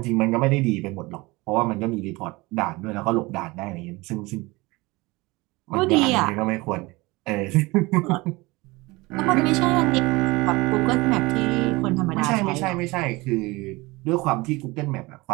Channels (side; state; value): left; quieter; 22.8 dB